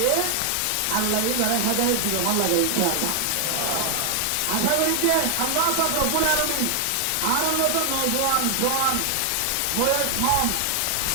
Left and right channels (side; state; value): both; different; correlation 0.00